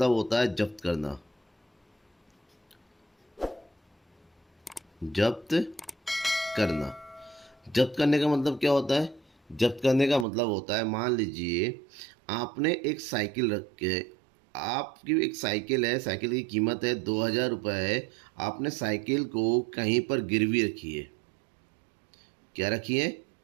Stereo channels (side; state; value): left; drops out; at 10.2 s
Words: होता है जब्त करना। जब्त करना, जब्त करने का मतलब क्या होता है? जब्त करने का मतलब होता है, मान लीजिए आपने एक साइकिल रख के, आपकी एक साइकिल है, साइकिल की कीमत है 2000 रुपये है। आपने साइकिल को कहीं पर गिरवी रखी है। क्या रखी है?